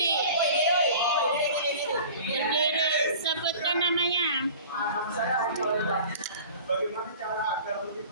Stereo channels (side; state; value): both; inverted; correlation -0.42